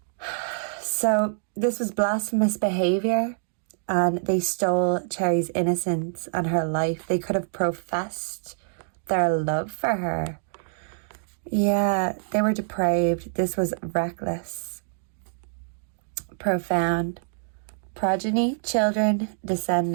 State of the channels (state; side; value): silent; left; digital silence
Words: So this was blasphemous behavior, and they stole Cherrie's innocence and her life. They could have professed their love for her. Yeah, they were depraved. This was reckless. Profound. Progeny, children,